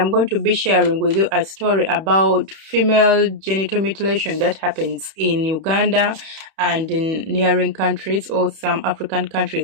going to be sharing with you a story about female genital mutilation that happens in Uganda and in neighboring countries or some African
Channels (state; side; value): late; left; 31 ms